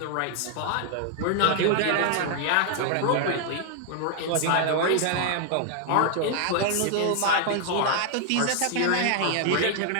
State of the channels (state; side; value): different; both; correlation 0.00